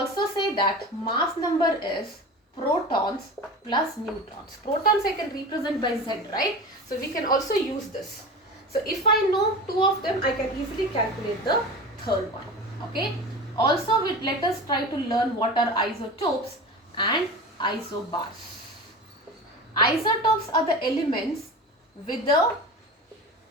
say that mass number is protons plus neutrons. Protons I can represent by Z, right? So we can also use this. So if I know 2 of them, I can easily calculate the third one. Okay. Also, let us try to learn what are isotopes and isobars. Isotopes are the elements with the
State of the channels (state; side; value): normal; both; correlation 0.31